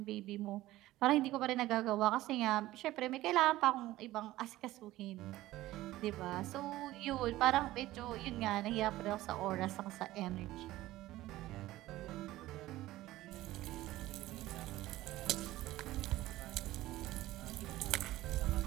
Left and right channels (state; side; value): quieter; left; 16.4 dB